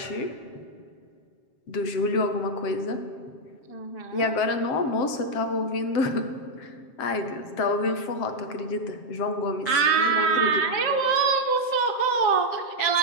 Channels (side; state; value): right; late; 7.5 ms